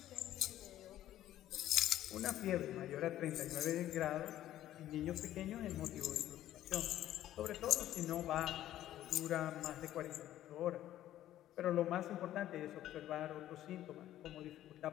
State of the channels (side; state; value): right; quieter; 13.0 dB